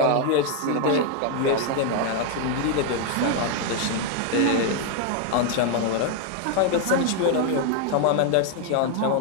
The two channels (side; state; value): both; different; correlation 0.00